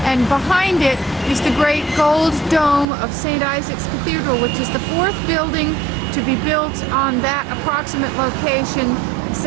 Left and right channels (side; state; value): left; drops out; at 2.9 s